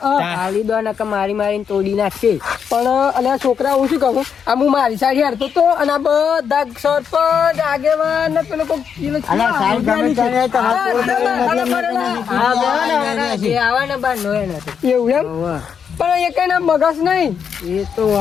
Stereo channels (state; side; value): quieter; right; 7.2 dB